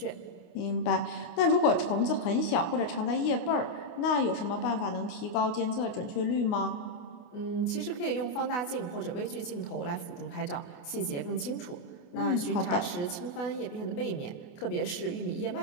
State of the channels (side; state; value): right; late; 28 ms